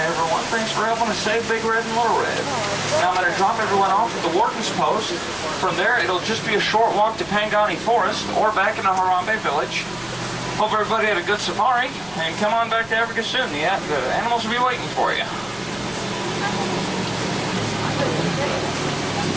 everyone. Thanks for helping us save Big Red and Little Red. Now I'm going to drop everyone off at the Warden's Post. From there, it'll just be a short walk to Pangani Forest or back into Harambe Village. Hope everybody had a good safari, and come on back to Africa soon. The animals will be waiting for you.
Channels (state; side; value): noise; left; rumble, 23 dB below the sound